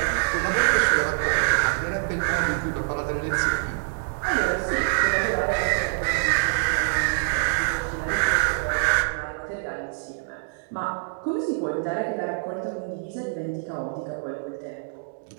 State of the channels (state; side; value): silent; left; digital silence